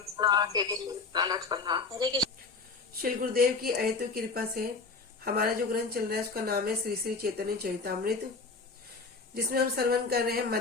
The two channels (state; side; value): quieter; right; 4.2 dB